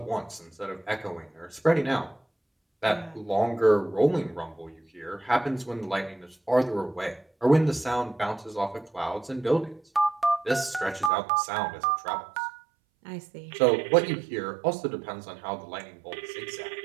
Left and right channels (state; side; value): drops out; left; at 11.1 s